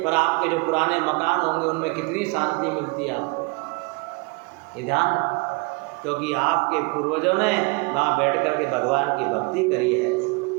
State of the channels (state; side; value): quieter; left; 29.6 dB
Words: पर आपके जो पुराने मकान होंगे उनमें कितनी शांति मिलती है आपको। ये ध्यान, क्योंकि आपके पूर्वजों ने वहाँ बैठ कर के भगवान की भक्ति करी है,